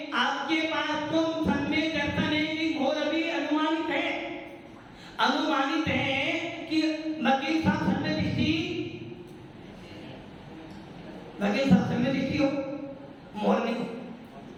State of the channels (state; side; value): identical; both; correlation 1.00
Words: आपके पास तो समय दर्शन है कि घोर अभी अनुमानित है, अनुमानित है कि वकील साहब समय दृष्टि, वकील साहब समय दृष्टि हो, मोहर नहीं।